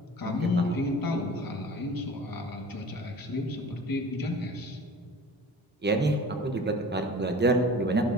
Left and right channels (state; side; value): normal; both; correlation 0.41